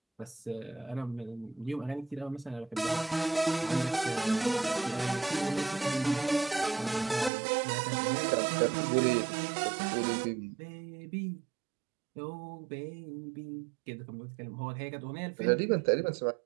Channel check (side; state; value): left; drops out; at 7.3 s